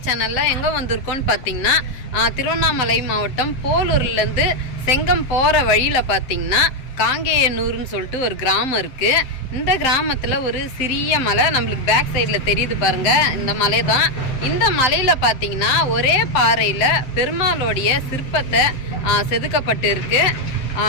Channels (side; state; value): right; late; 7.7 ms